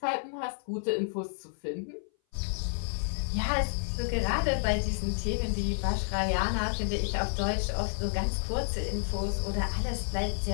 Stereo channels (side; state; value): right; silent; 57 dB below the other